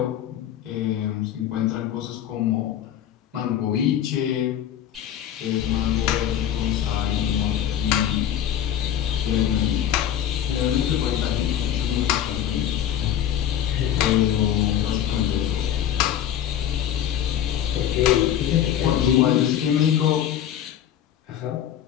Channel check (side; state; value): right; quieter; 10.4 dB